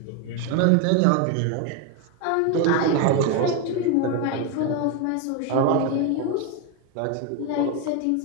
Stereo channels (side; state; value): both; different; correlation 0.02